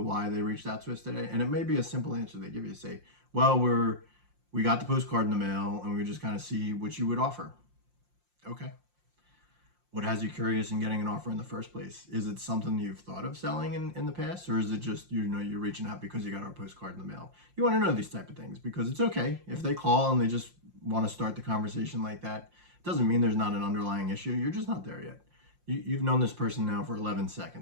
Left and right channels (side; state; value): left; late; 5.7 ms